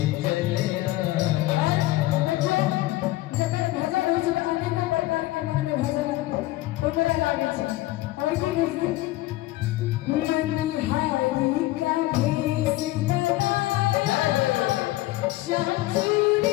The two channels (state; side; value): quieter; right; 17.5 dB